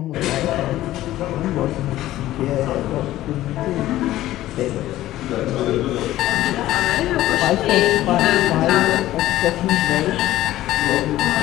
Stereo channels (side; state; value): right; quieter; 14.8 dB